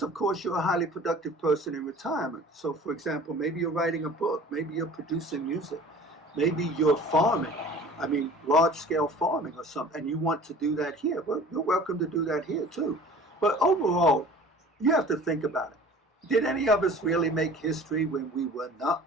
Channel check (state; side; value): normal; both; correlation 0.45